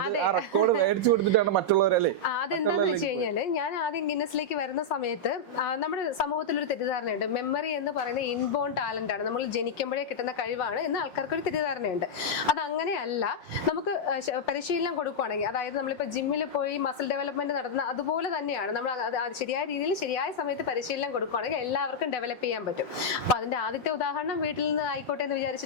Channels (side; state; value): right; late; 5.5 ms